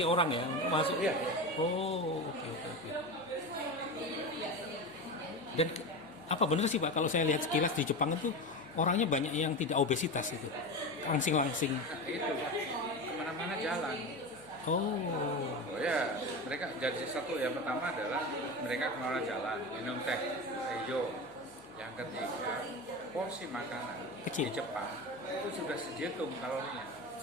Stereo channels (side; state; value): left; noise; hum, 28 dB below the sound